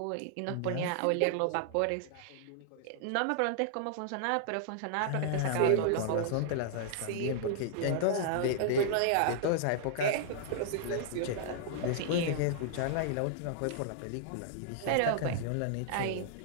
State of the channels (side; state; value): both; different; correlation -0.01